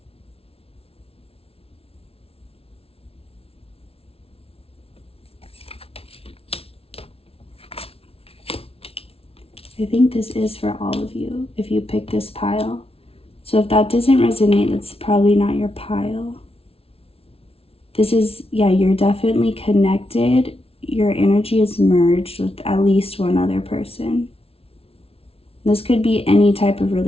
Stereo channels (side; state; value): right; late; 0.28 ms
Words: I think this is for all of you if you pick this pile. So if that doesn't resonate, that's probably not your pile. This is, yeah, you're definitely connected. Your energy is merged with at least one other person. This could be any type of